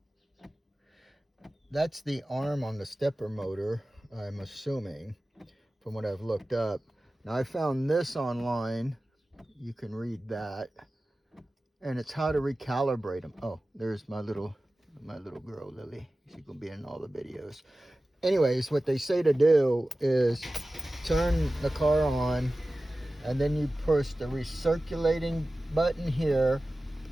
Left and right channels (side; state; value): both; normal; correlation 0.96